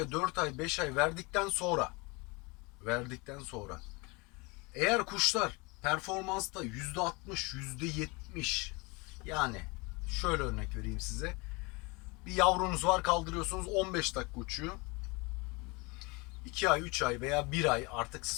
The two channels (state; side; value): quieter; right; 27.3 dB